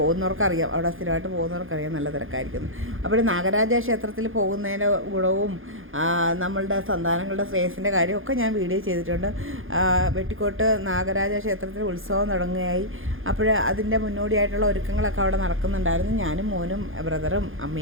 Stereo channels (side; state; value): left; late; 0.59 ms